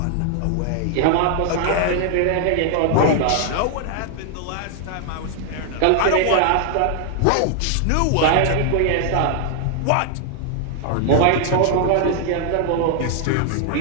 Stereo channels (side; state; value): both; different; correlation 0.00